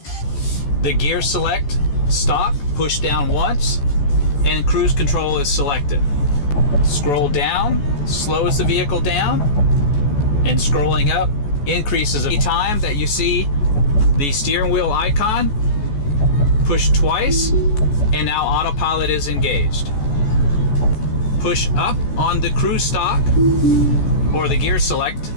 The gear select, stop, push down once, and cruise control is selected. Scroll down, slows the vehicle down, and scrolling up increases the time that you see the steering wheel icon. Push twice, and now Autopilot is engaged. Push up on the cruise stop or the gear select,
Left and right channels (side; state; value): right; late; 14 ms